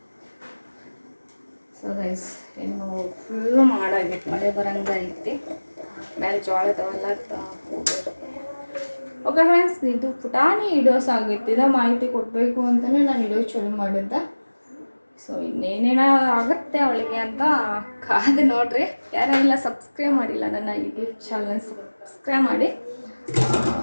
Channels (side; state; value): both; inverted; correlation -1.00